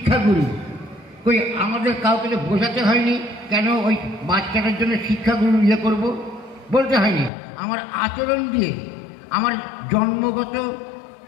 কই আমাদের কাউকে তো বোঝাতে হয়নি কেন ওই বাচ্চাটার জন্য শিক্ষাগুরু করব, বলতে হয়নি। আমার আচরণ দিয়ে, আমার জন্মগত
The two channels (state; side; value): drops out; right; at 7.3 s